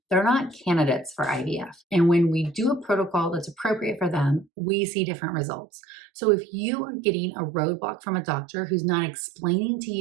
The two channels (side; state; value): left; drops out; at 4.5 s